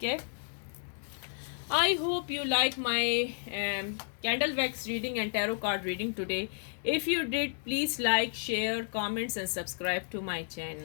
है। I hope you like my candle wax reading and tarot card reading today. If you did, please like, share, comments and subscribe to my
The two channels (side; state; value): right; silent; digital silence